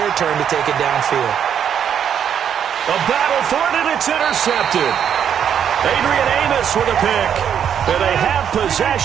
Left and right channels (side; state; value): left; quieter; 8.6 dB